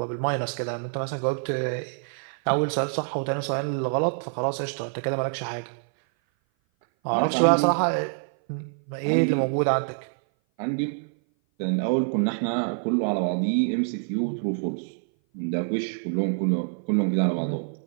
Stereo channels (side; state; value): left; silent; 57 dB below the other